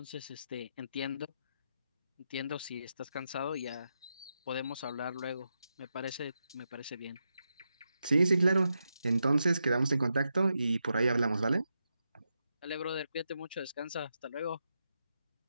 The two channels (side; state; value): both; inverted; correlation -0.86